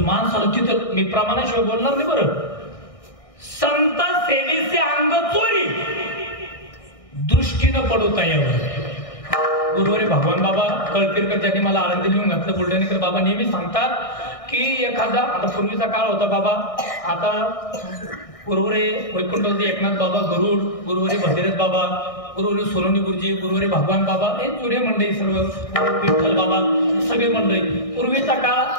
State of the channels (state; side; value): late; right; 1.6 ms